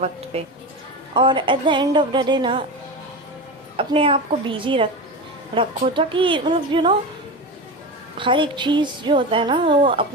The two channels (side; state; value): both; normal; correlation 0.23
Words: पे। और at the end of the day ना अपने आप को बिजी रखो, ताकि मतलब हर एक चीज़ जो होता है ना, वो